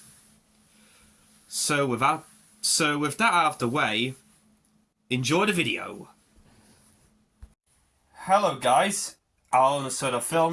So with that out of the way, enjoy the video. Hello guys, Alan of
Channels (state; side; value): identical; both; correlation 1.00